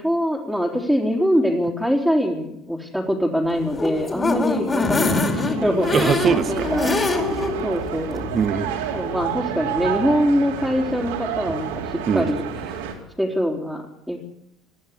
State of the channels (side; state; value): both; normal; correlation 0.76